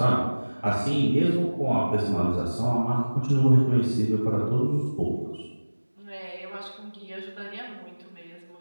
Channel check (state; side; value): inverted; both; correlation -1.00